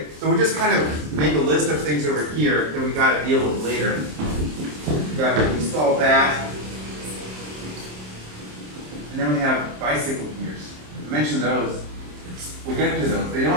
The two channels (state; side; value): late; left; 27 ms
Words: so we'll just kind of make a list of things over here that we gotta deal with later. We gotta install that. And then we have bicycle gears. I mentioned those. We'll get to those. They